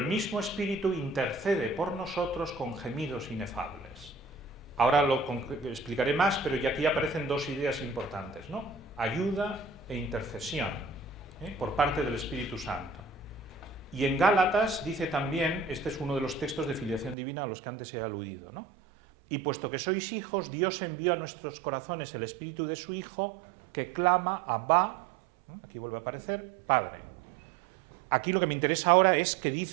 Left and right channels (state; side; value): drops out; left; at 17.2 s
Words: mismo Espíritu intercede por nosotros con gemidos inefables. Ahora lo explicaré más, pero ya aquí aparecen dos ideas importantes, ¿no? Ayuda e intercesión, por parte del Espíritu Santo. Y en Gálatas dice también, este es uno de los textos de filiación divina a los que antes he aludido, ¿no? Y puesto que sois hijos, Dios envió a nuestros corazones el Espíritu de su Hijo, que clama Abba, aquí vuelve a aparecer, Padre. Aquí lo que me interesa ahora es que